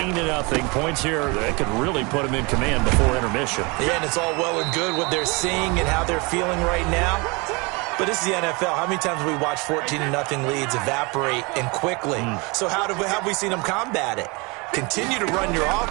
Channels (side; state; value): left; quieter; 28.1 dB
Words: Points here that could really put them in command before intermission. Yeah, and it's all well and good what they're seeing and how they're feeling right now. But this is the NFL. How many times have we watched 14-0 leads evaporate and quickly? So how have we seen them combat it? Continue to run your